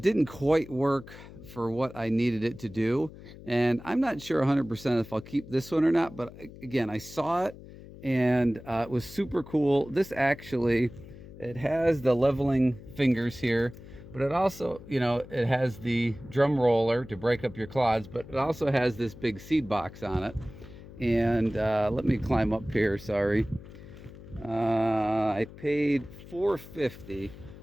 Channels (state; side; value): noise; left; hum, 17 dB below the sound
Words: didn't quite work for what I needed it to do. And I'm not sure 100% if I'll keep this one or not, but again, I saw it and it was super cool. This actually, it has the leveling fingers here, but it also, it has the drum roller to break up your clods, but it also has this big seed box on it. And let me climb up here, sorry. I paid $4.50